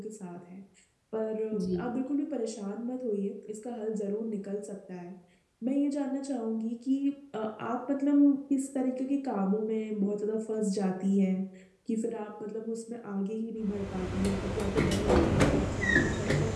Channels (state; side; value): identical; both; correlation 1.00